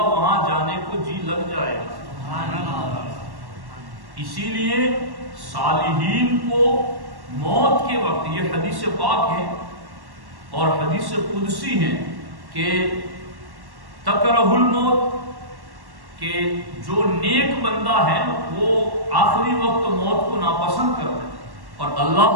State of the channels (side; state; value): left; late; 1.1 ms